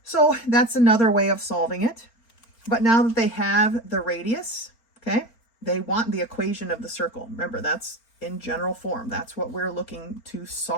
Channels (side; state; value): right; late; 4.4 ms